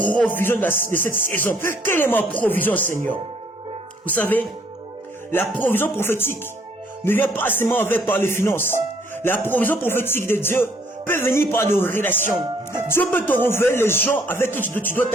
de cette saison. Quelle est ma provision, Seigneur? Vous savez, la provision prophétique ne vient pas seulement par les finances. La provision prophétique de Dieu peut venir par des relations. Dieu peut te révéler les gens avec qui tu dois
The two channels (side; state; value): both; normal; correlation 0.64